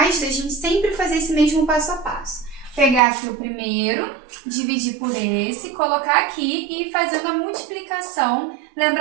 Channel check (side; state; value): left; drops out; at 3.0 s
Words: a gente sempre fazer esse mesmo passo a passo. Pegar aqui o primeiro, dividir por esse, colocar aqui e ir fazendo a multiplicação,